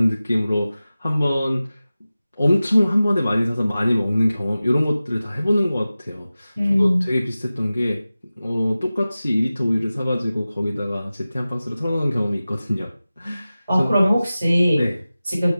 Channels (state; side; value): inverted; both; correlation -0.96